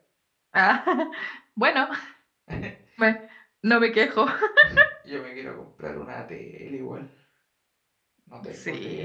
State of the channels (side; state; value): both; identical; correlation 1.00